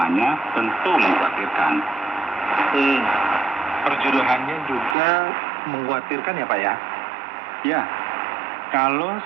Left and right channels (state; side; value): drops out; left; at 5.0 s